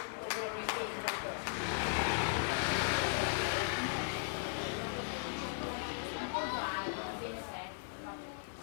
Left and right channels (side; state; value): right; silent; 53 dB below the other